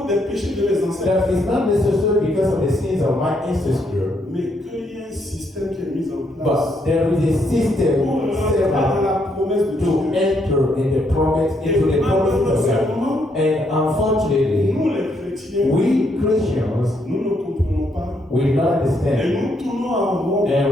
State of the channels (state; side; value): normal; both; correlation 0.74